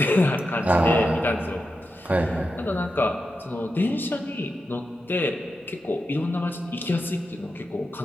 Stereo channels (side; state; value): both; normal; correlation 0.89